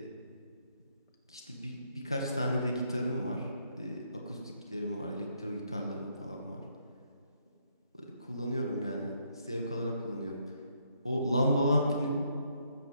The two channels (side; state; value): both; inverted; correlation -0.73